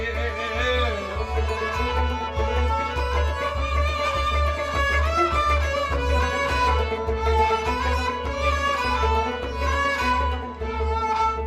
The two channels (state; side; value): identical; both; correlation 1.00